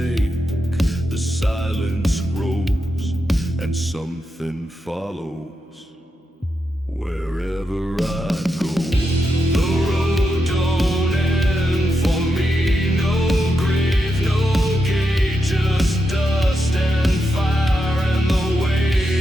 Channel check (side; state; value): both; normal; correlation 0.85